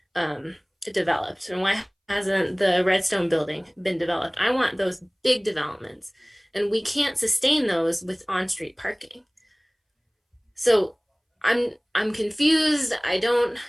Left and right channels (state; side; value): identical; both; correlation 1.00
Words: developed, and why hasn't the Redstone building been developed? I want those big developments, and we can't sustain those with on-street parking. So I'm confused. I don't